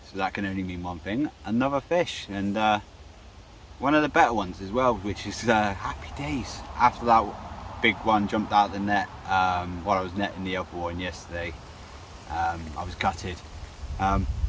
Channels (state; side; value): identical; both; correlation 1.00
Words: so that can only mean one thing, another fish, and one of the better ones as well, which is happy days. After that big one jumped out the net while I was netting the other one yesterday, I was gutted, but